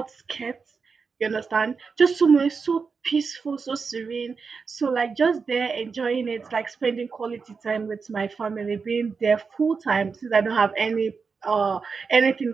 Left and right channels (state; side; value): quieter; left; 5.2 dB